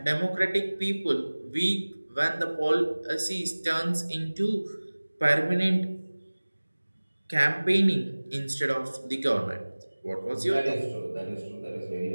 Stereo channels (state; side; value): inverted; both; correlation -1.00